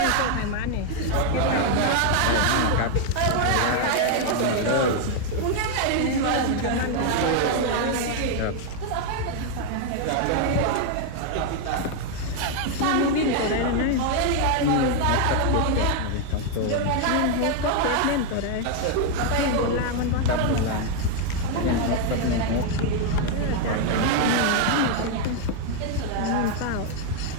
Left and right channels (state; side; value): different; both; correlation 0.00